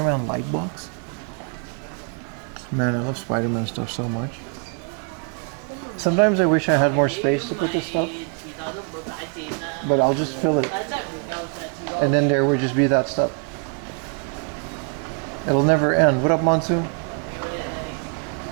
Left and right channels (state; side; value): quieter; left; 37.8 dB